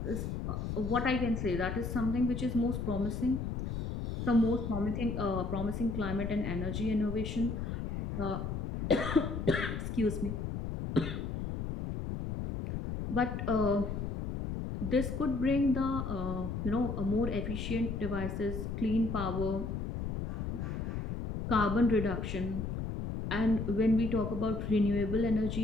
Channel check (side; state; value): left; noise; rumble, 4 dB below the sound